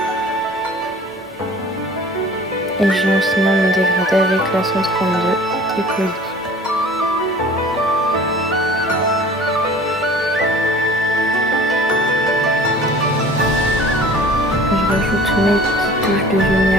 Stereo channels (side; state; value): both; normal; correlation 0.45